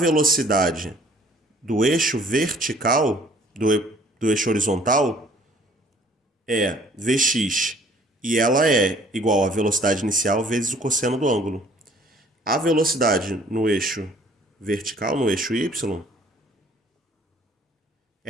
do eixo vertical, do eixo horizontal, é Vx, e ela é igual à velocidade inicial vezes o cosseno do ângulo. A velocidade no eixo vertical, no eixo y,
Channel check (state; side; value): normal; both; correlation 0.56